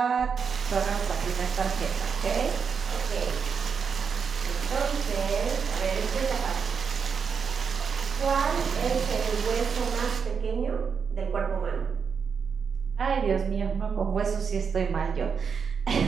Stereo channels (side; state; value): left; quieter; 6.2 dB